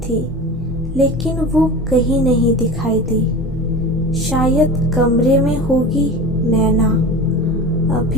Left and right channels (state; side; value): normal; both; correlation 0.32